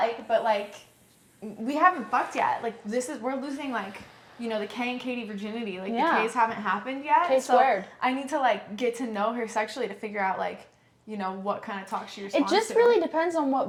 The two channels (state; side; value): identical; both; correlation 1.00